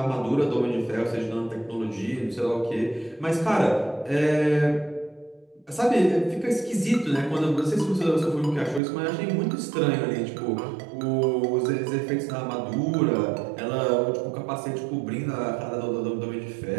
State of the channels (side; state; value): left; drops out; at 8.8 s